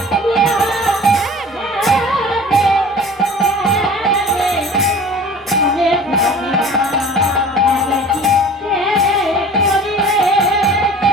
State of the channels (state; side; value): normal; both; correlation 0.43